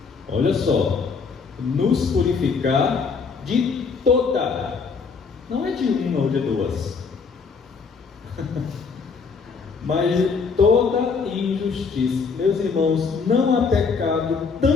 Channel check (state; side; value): quieter; right; 5.2 dB